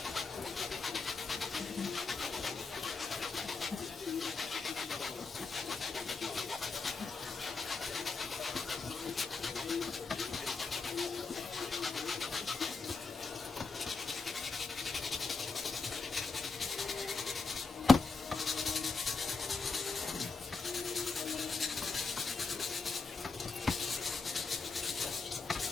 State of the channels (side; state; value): right; quieter; 4.3 dB